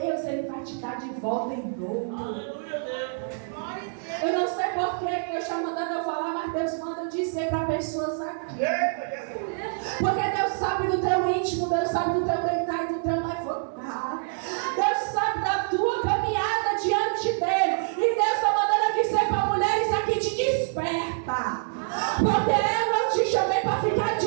Ele vai te dar de volta em dobro. Eu não sei porquê que Deus está mandando eu falar, mas Deus manda dizer para pessoas aqui. Porque Deus sabe do teu íntimo, Deus sabe do teu deitar e do teu levantar. Deus sabe da tua caminhada diante dEle. E Deus está mandando dizer para mulheres aqui, te desperta. Porque eu não te chamei para ficar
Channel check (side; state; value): left; silent; digital silence